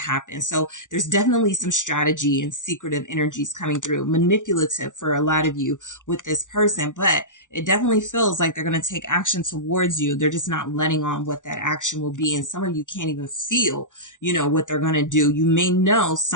So there's definitely some strategy and secretive energies coming through, manipulative for a lot of you with this person, but it definitely feels like they're going to take action towards you. They're just not letting on what that action will be. And some of you can't even feel, you know, what they're going to do. You may know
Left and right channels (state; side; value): late; right; 0.87 ms